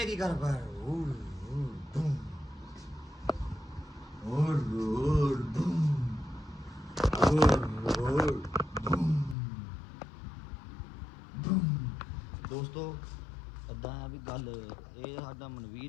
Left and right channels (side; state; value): right; drops out; at 9.3 s